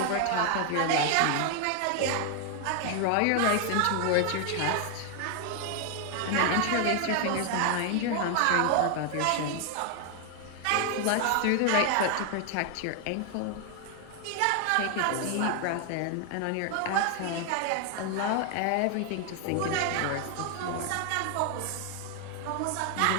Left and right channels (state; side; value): different; both; correlation 0.01